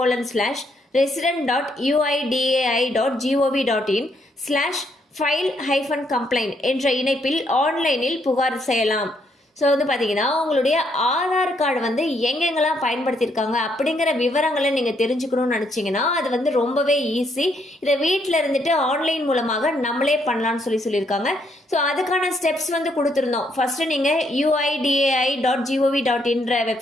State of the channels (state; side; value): normal; both; correlation 0.73